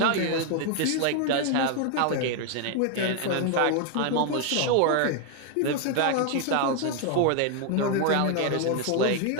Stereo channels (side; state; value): both; different; correlation 0.00